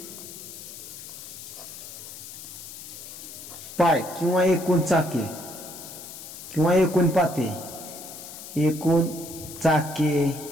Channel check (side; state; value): left; noise; hiss, 12 dB below the sound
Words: पाय किंवा एकूण चाके किंवा एकूण पाते, एकूण चाके